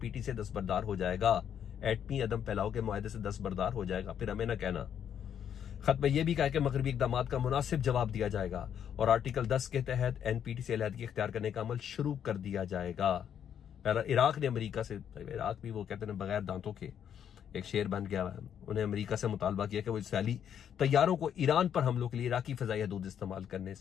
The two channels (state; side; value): quieter; right; 8.9 dB